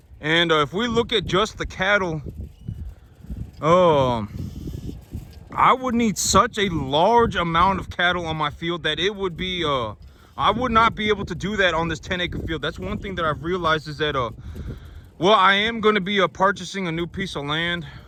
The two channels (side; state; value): both; identical; correlation 1.00